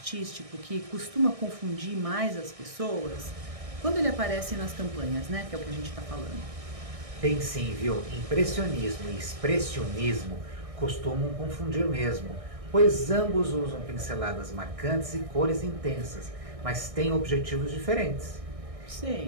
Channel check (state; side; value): late; left; 1.6 ms